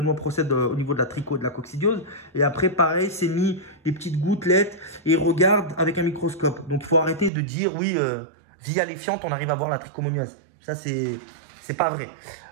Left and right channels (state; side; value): drops out; left; at 7.3 s